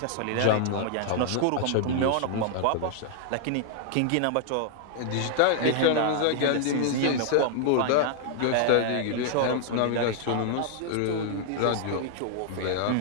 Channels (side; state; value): both; different; correlation -0.01